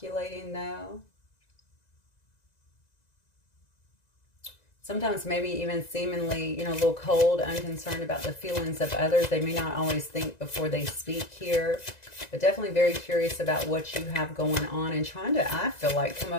though. Sometimes maybe even seemingly, you know, a little cold, unconcerned about the feelings of others. They may not always think before they speak here, but definitely very curious about what you have going on and trying to, I feel like, come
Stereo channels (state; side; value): late; right; 1.9 ms